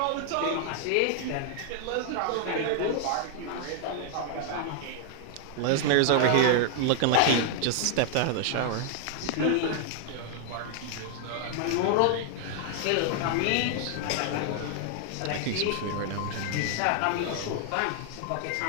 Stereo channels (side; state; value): both; different; correlation 0.00